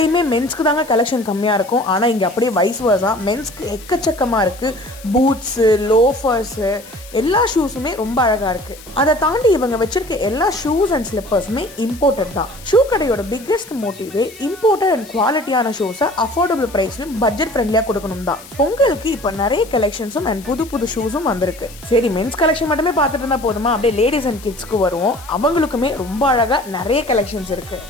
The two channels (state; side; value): noise; left; hiss, 19 dB below the sound